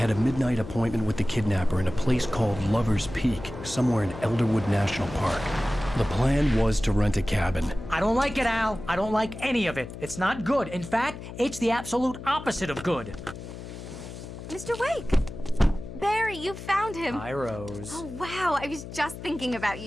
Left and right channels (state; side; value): noise; left; hum, 11 dB below the sound